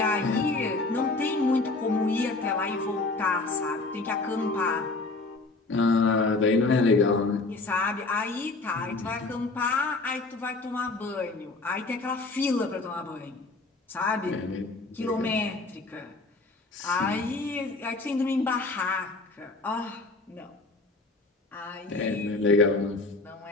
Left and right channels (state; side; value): quieter; right; 3.4 dB